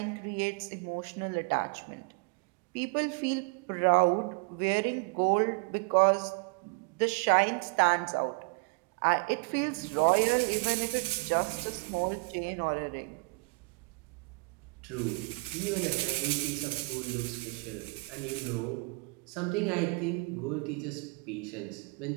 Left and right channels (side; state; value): left; quieter; 30.0 dB